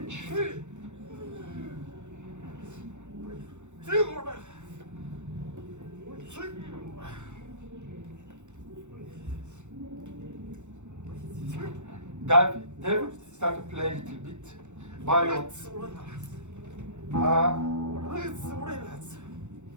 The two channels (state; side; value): late; left; 0.84 ms